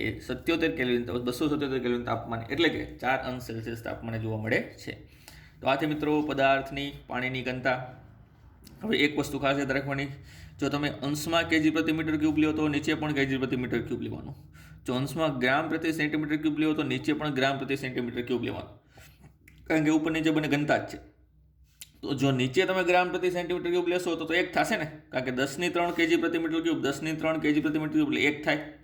એ 77 કેલ્વિન 277 કેલ્વિન તાપમાન એટલે કે 4 અંશ સેલ્સિયસ તાપમાને જોવા મળે છે. તો આ છે મિત્રો પદાર્થની પાણીની ઘનતા. હવે એક વસ્તુ ખાસ યાદ રાખવાની, જો તમે અંશમાં કેજી પ્રતિ મીટર ક્યુબ લ્યો તો નીચે પણ કેજી પ્રતિ મીટર ક્યુબ લેવાનું. જો અંશમાં ગ્રામ પ્રતિ સેન્ટીમીટર ક્યુબ લ્યો તો નીચે પણ ગ્રામ પ્રતિ સેન્ટીમીટર ક્યુબ લેવાનું, કારણ કે ઉપર નીચે બંને ઘનતા જ છે. તો જો નીચે તમે ગ્રામ પ્રતિ સેન્ટીમીટર ક્યુબ લેશો તો એક થશે ને, કારણ કે 10⁻³ કેજી પ્રતિ મીટર ક્યુબ 10⁻³ કેજી પ્રતિ મીટર ક્યુબ એટલે એક થાય.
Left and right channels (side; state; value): both; identical; correlation 1.00